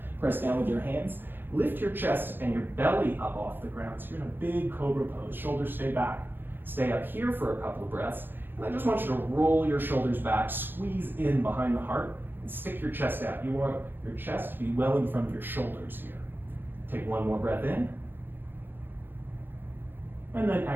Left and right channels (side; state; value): left; late; 0.095 ms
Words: press down with your hands. Lift your chest and your belly up off the ground. So you're in a big cobra pose. Shoulders stay back. Stay up here for a couple of breaths. And I just want you to roll your shoulders back, squeeze in behind the heart, and stick your chest out. You want your chest to be well in front of your shoulders here. Take one more breath in. And then